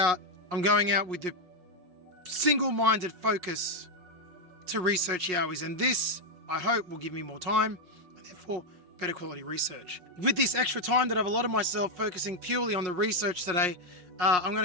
I'm going out with the single-minded focus to research YOWIEs, and this, I hope, will give me more time, and therefore better quality research. With this extra time that I've allotted myself focusing purely on the research today, I'm going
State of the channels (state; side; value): late; left; 5.5 ms